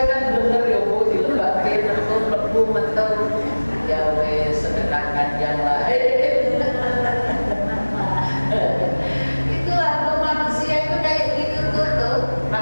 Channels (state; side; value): inverted; both; correlation -1.00